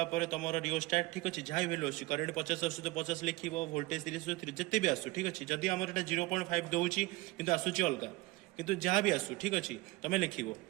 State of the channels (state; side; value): quieter; left; 21.0 dB